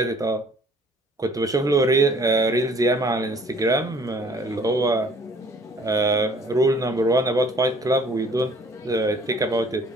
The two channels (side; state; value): both; normal; correlation 0.56